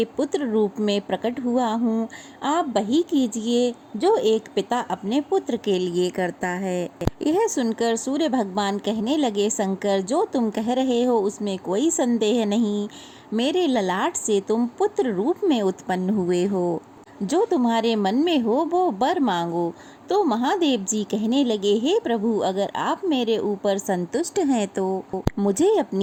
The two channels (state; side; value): identical; both; correlation 1.00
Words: पुत्र रूप में प्रकट हुआ हूँ। आप वही कीजिए जो एक पिता अपने पुत्र के लिए करता है। यह सुनकर सूर्य भगवान कहने लगे, शंकर, जो तुम कह रहे हो उसमें कोई संदेह नहीं। मेरे ललाट से तुम पुत्र रूप में उत्पन्न हुए हो। जो तुम्हारे मन में हो वो वर मांगो। तो महादेव जी कहने लगे, हे प्रभु, अगर आप मेरे ऊपर संतुष्ट हैं तो मुझे